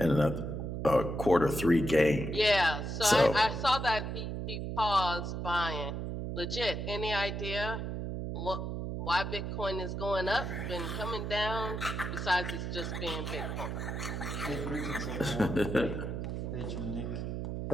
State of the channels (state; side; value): noise; right; hum, 4 dB below the sound